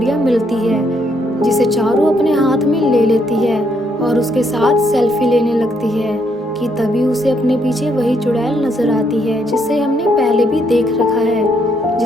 मिलती है, जिसे चारू अपने हाथ में ले लेती है और उसके साथ सेल्फी लेने लगती है कि तभी उसे अपने पीछे वही चुड़ैल नजर आती है जिसे हमने पहले भी देख रखा है,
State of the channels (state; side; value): normal; both; correlation 0.73